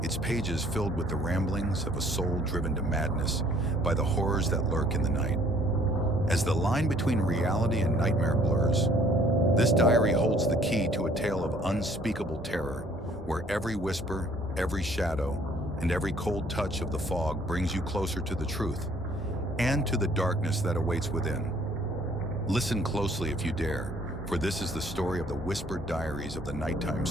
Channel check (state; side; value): normal; both; correlation 0.59